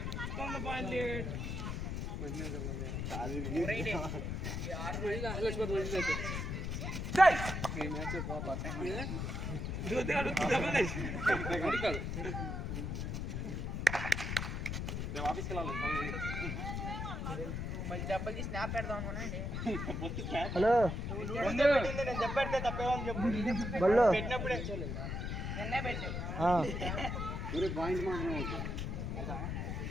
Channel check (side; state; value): left; noise; rumble, 3 dB below the sound